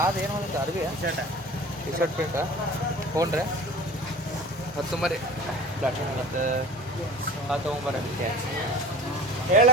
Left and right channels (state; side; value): normal; both; correlation 0.39